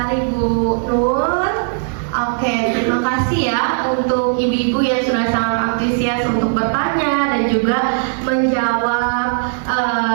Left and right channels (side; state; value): left; silent; 68 dB below the other